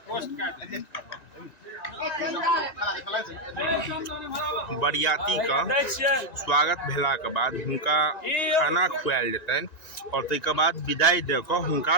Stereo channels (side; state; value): right; late; 1.9 ms